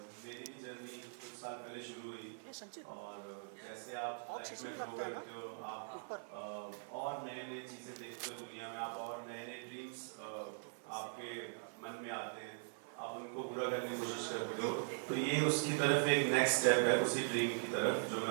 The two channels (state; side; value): silent; left; 50 dB below the other